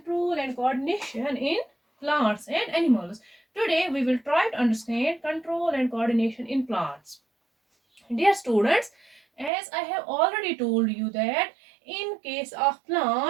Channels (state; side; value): drops out; left; at 9.5 s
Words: and coordination in plants and animals. Today we will try to understand control and coordination in plants. Dear students, as I have already told you that in case of